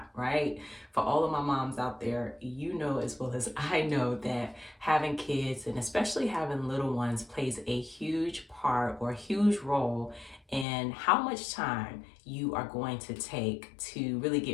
right? For all of my moms out there, you know as well as I know that having kids and especially having little ones plays a huge part or a huge role in how much time you are going to take to really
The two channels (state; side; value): drops out; right; at 10.7 s